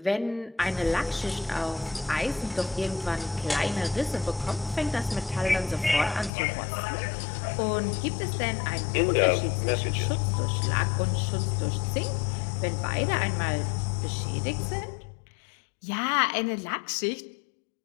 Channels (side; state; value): right; drops out; at 6.3 s